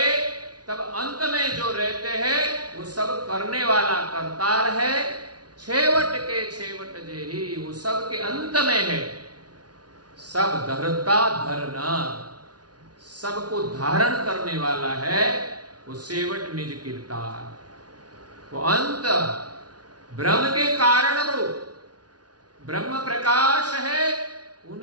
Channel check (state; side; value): late; left; 0.69 ms